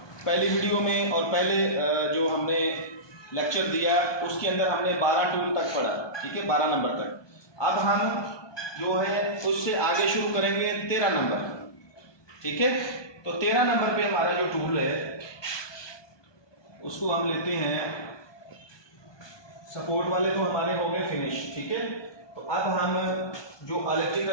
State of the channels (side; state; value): right; late; 1.2 ms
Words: पहली वीडियो में और पहले जो हमने लेक्चर दिया उसके अंदर हमने 12 टूल तक पढ़ा, ठीक है, 12 नंबर तक। अब हम जो है उससे आगे शुरू करेंगे 13 नंबर, ठीक है। तो 13 नंबर पे हमारा जो टूल है उसको हम लेते हैं, सपोर्ट वाले तो हमारे हो गए फिनिश, ठीक है। तो अब हम जो